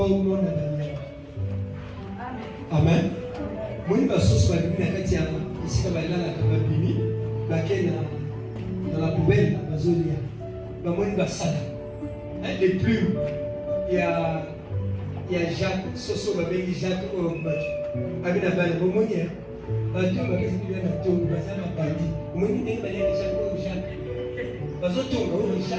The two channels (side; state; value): both; identical; correlation 1.00